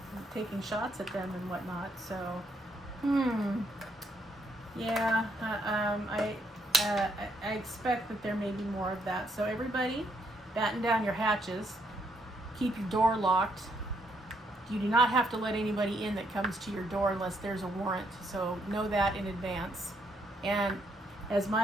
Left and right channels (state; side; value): normal; both; correlation 0.73